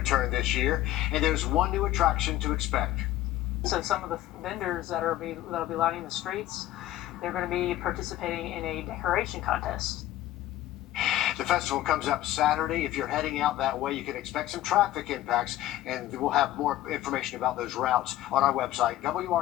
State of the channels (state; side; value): quieter; right; 14.5 dB